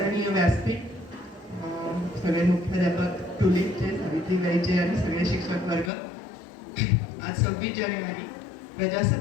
व्यासपीठ, सगळे मुख्याध्यापक, टुलिपचे, सावित्रीबाईचे आणि सगळे शिक्षक वर्ग, आज 26 जानेवारी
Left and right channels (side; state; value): right; drops out; at 5.9 s